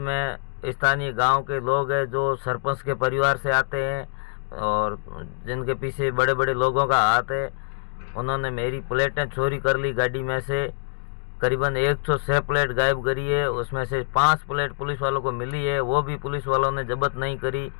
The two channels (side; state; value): right; silent; digital silence